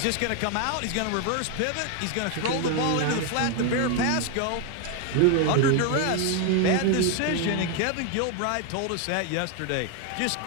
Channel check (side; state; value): both; different; correlation 0.01